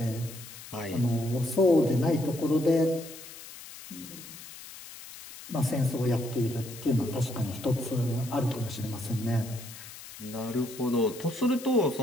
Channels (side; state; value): left; noise; hiss, 15 dB below the sound